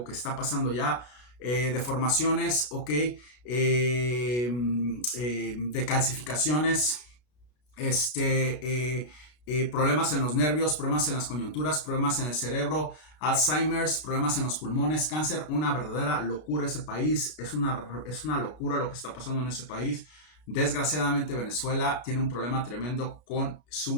que está pasando ya. Deformaciones, ¿ok? De calcificaciones, problemas en los nervios, problemas en las coyunturas, problemas en el cerebro, Alzheimer's, problemas en los pulmones, cáncer. Una verdadera locura ese país. Es una locura lo que está pasando en ese país. Desgraciadamente Venezuela tiene un problema tremendo con su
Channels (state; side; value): late; right; 33 ms